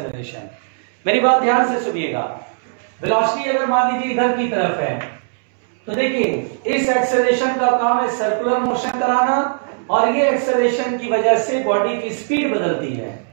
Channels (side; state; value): left; silent; 67 dB below the other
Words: मेरी बात ध्यान से सुनिएगा, वेलोसिटी अगर मान लीजिए इधर की तरफ है तो देखिए इस एक्सेलरेशन का काम है सर्कुलर मोशन कराना, और ये एक्सेलरेशन की वजह से बॉडी की स्पीड बदलती है।